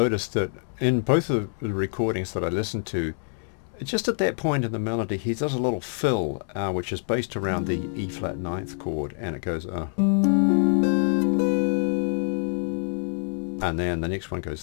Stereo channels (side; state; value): right; silent; digital silence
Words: that in both of the recordings that I listened to, just at that point in the melody, he does a little fill, which is based around the E flat ninth chord, and it goes and then the next one goes,